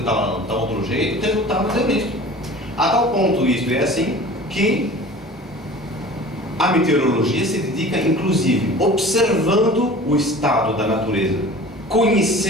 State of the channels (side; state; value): both; normal; correlation 0.41